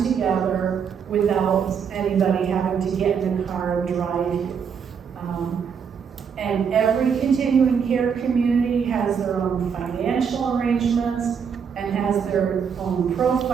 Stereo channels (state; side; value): quieter; left; 6.9 dB